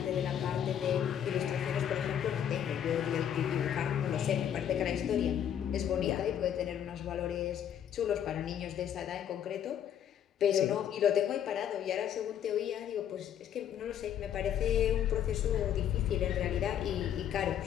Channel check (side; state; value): right; quieter; 9.6 dB